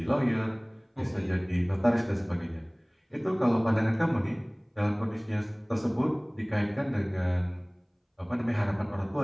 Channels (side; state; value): both; identical; correlation 1.00